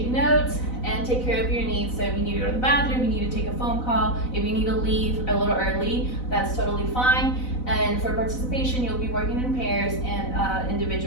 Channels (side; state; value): right; late; 4.0 ms